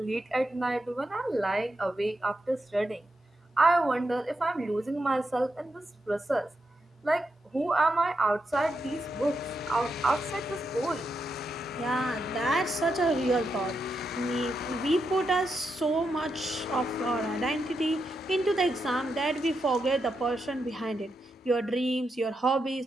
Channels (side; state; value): both; normal; correlation 0.84